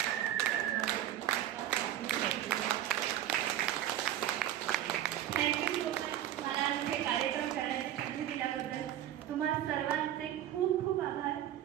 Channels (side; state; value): left; quieter; 12.0 dB